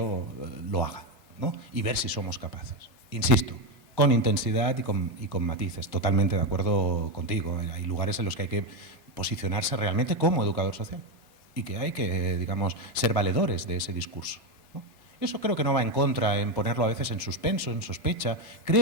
lo haga, ¿no? Y ver si somos capaces. Insisto, con intensidad y con matices. Totalmente de acuerdo contigo. Hay lugares en los que hay que posicionarse realmente como educador social y que hay que, digamos, ser valedores de ese discurso, ¿no? Eso creo que no va en contra, en ponerlo a veces en suspenso, en sospecha.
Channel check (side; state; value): both; normal; correlation 0.10